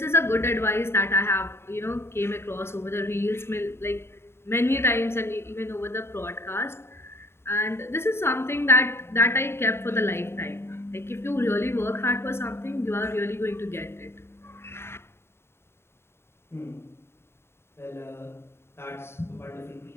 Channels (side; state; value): right; late; 0.12 ms